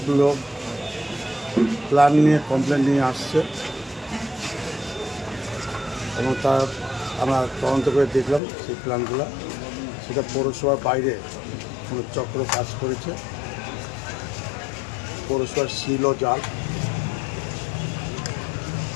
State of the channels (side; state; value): right; drops out; at 8.4 s